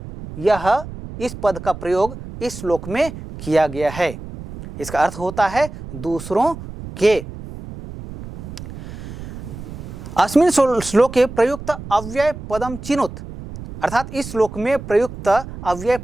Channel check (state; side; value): noise; right; rumble, 12 dB below the sound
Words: यह इस पद का प्रयोग इस श्लोक में किया गया है। इसका अर्थ होता है दूसरों के। अस्मिन् श्लोके प्रयुक्त अव्यय पदम चिनुत, अर्थात इस श्लोक में प्रयुक्त अव्यय